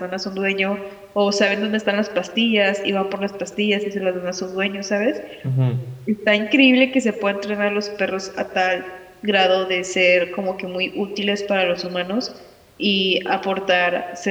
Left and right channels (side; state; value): both; identical; correlation 1.00